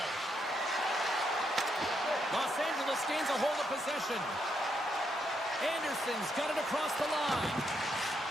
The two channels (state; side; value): normal; both; correlation 0.78